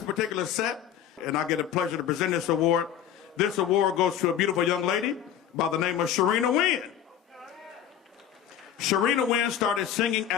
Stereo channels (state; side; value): quieter; right; 9.8 dB